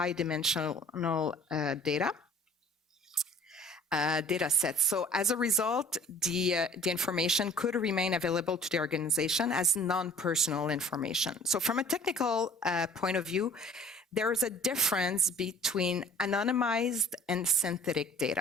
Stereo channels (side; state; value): both; normal; correlation 0.50